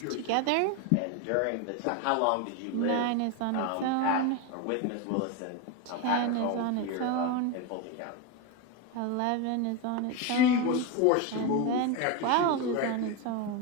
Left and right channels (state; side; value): different; both; correlation 0.03